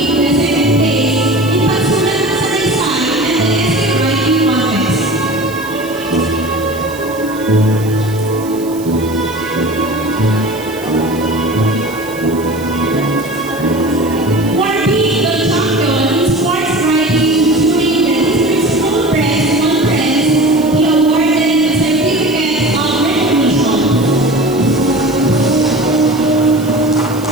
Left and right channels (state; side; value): noise; right; hiss, 18 dB below the sound